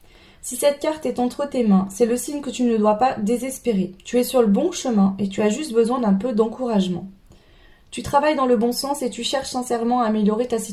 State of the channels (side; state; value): both; identical; correlation 1.00